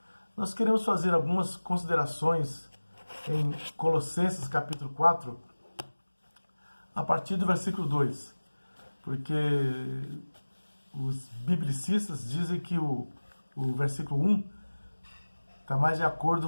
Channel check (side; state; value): both; inverted; correlation -1.00